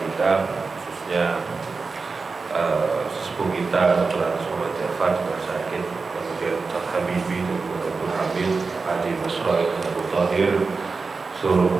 khususnya sepuh kita Dr. Muhammad Jafar juga sakit, kemudian Ustaz Habibi dan Dr. Hamid, Haji Masroh dan Abu Tahir, seluruh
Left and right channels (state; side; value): quieter; left; 4.4 dB